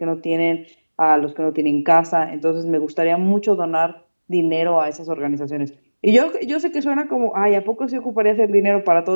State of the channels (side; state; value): both; inverted; correlation -1.00